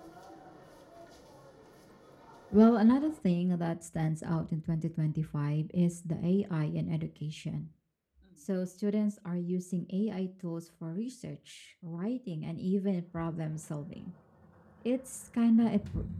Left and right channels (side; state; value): both; identical; correlation 1.00